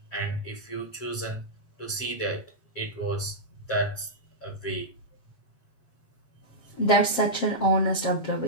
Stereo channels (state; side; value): late; right; 7.6 ms